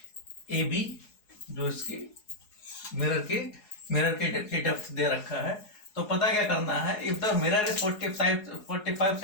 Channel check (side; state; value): right; late; 4.8 ms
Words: ए बी, जो इसकी मिरर की डेप्थ दे रखा है, तो पता क्या करना है, if the mirror is 45